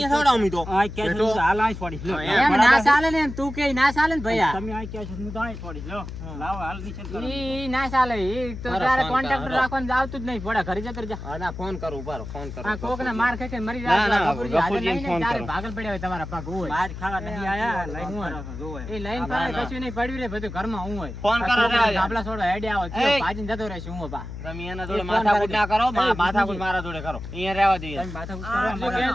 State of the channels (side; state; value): left; noise; hum, 9 dB below the sound